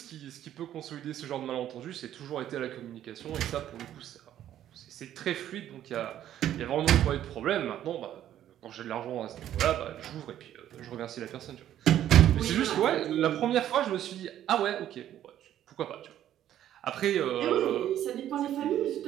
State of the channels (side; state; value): left; quieter; 11.6 dB